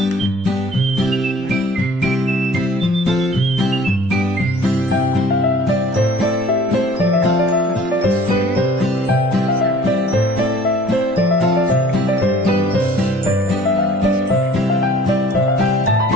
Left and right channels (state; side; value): normal; both; correlation 0.51